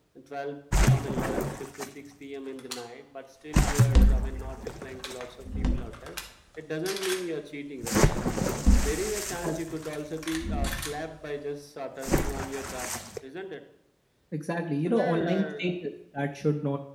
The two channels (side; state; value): both; identical; correlation 1.00